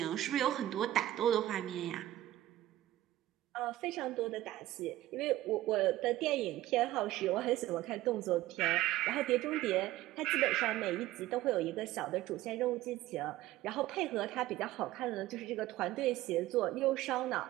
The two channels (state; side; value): quieter; left; 15.3 dB